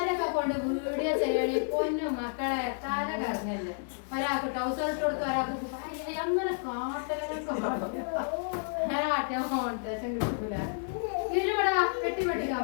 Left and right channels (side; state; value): right; silent; 57 dB below the other